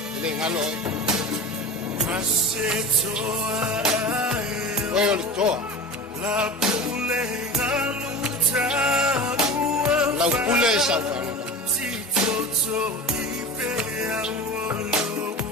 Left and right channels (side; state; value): both; normal; correlation 0.30